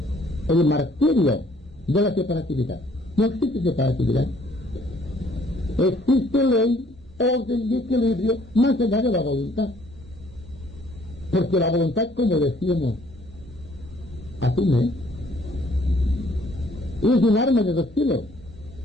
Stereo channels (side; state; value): both; normal; correlation 0.61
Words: el martirio de la separatividad? No existe separatividad. Existe ley, orden y equilibrio más allá de la voluntad. Porque la voluntad, como decíamos, asume, es un arma de dos filos.